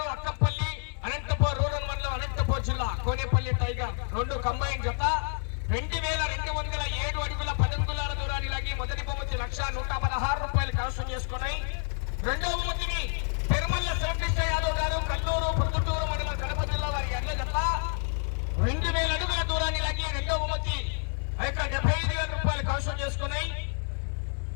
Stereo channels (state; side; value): silent; right; 59 dB below the other